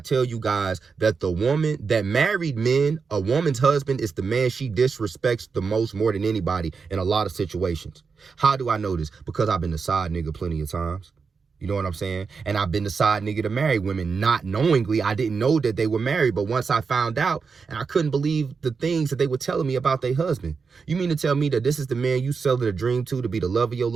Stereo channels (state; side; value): quieter; left; 5.2 dB